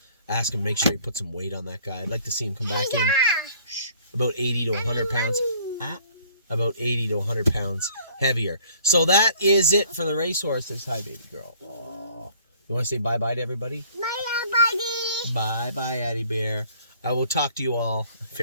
ask him to make sure he put some weight on that guy. I'd like to see him come back in about 80 to 100 pounds. about 80 to 100 pounds heavier. So that is it for the racehorses. Hi, baby girl. Aww. You want to say bye-bye to everybody? Bye, buddy. Bye-bye, Addie Bear. I will talk to you all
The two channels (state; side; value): inverted; both; correlation -0.56